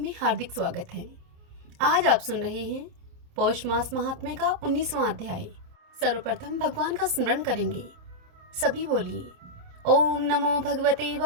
हार्दिक स्वागत है। आज आप सुन रहे हैं पौष मास महात्म्य का 19वां अध्याय। सर्वप्रथम भगवान का स्मरण करेंगे। सभी बोलिए ओम नमो भगवते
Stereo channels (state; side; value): late; left; 28 ms